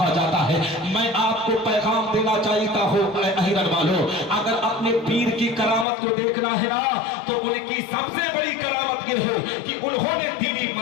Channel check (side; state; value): right; drops out; at 5.9 s